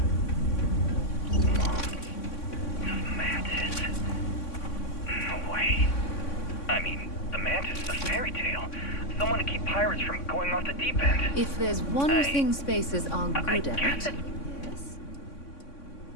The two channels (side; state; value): right; late; 3.6 ms